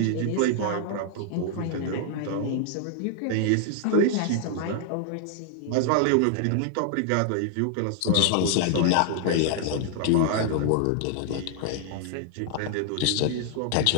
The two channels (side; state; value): both; different; correlation -0.01